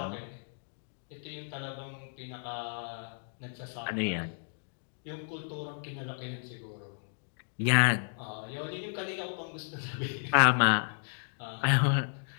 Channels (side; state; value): right; silent; digital silence